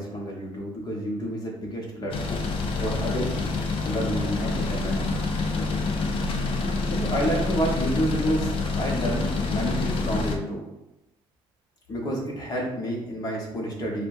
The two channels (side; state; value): both; normal; correlation 0.68